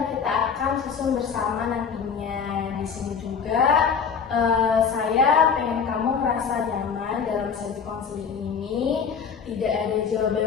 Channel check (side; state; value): right; quieter; 6.4 dB